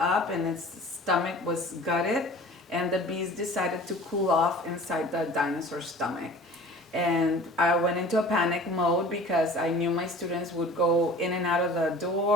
and its stomach was gutted, and the bees decided to cool off inside the dinosaur's stomach. And I went into a panic mode because I knew my students would go in and out of the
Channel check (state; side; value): normal; both; correlation 0.44